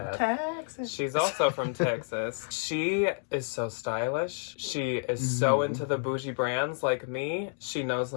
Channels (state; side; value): silent; right; digital silence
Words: Texas. She's also from Texas. She is so stylish. She is so into the bougie brands like me. She knows